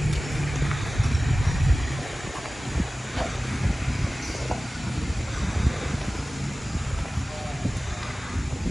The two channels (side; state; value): both; normal; correlation 0.96